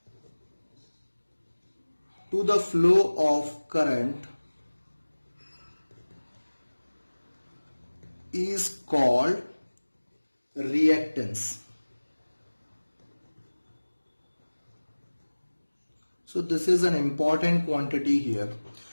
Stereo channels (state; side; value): inverted; both; correlation -1.00